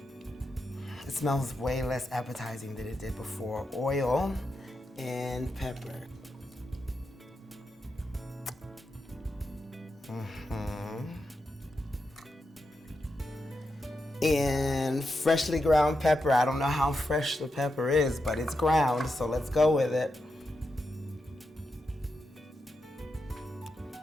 It smells way less appetizing than it did before. Oil and pepper. And freshly ground pepper. I don't know how fresh the pepper is, but it's ground, so let's go with it.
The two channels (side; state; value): both; normal; correlation 0.87